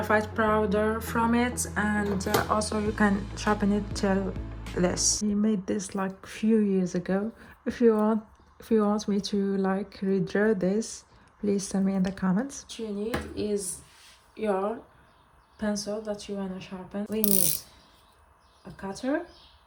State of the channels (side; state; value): both; identical; correlation 1.00